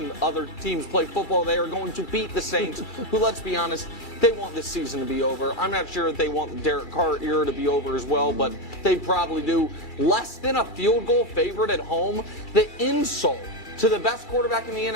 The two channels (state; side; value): late; right; 2.3 ms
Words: other teams play football. They are going to beat the Saints, who, let's be honest, they want this season to be over. I'm not sure if they want the Derek Carr era to be over as well, but they probably do. Less than a field goal favorite at home. The insult to the best quarterback in the